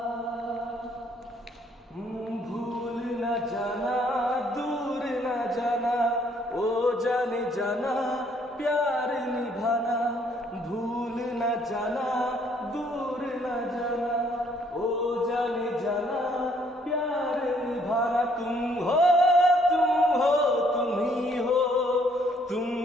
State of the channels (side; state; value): both; normal; correlation 0.65